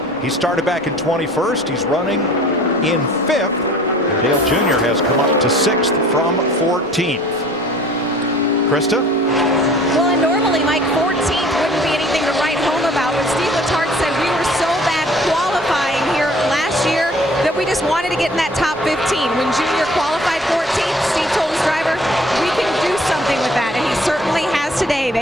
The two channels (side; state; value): both; normal; correlation 0.51